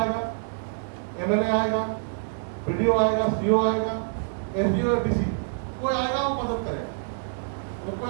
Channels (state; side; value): silent; left; 61 dB below the other